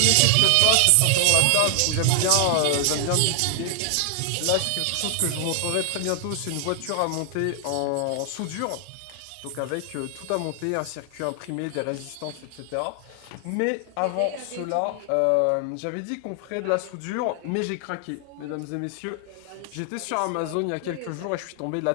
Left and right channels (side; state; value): both; different; correlation 0.00